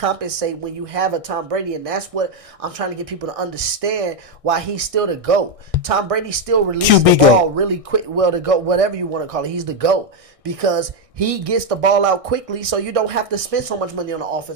when you have a Tom Brady. And that's what I'm trying to get people to understand why he's still the GOAT. Tom Brady still releases the ball really quick. Well, the GOAT, whatever you want to call it, he's the GOAT. Because he gets the ball out quickly, so you don't have to spend so much money on the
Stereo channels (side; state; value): left; late; 1.6 ms